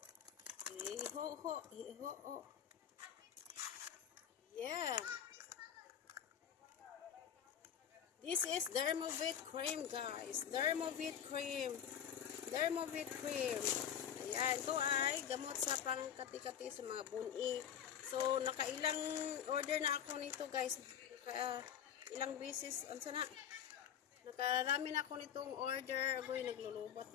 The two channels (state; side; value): quieter; right; 9.1 dB